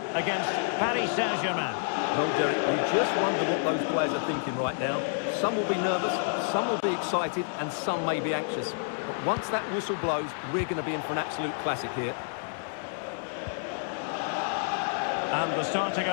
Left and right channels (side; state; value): right; silent; digital silence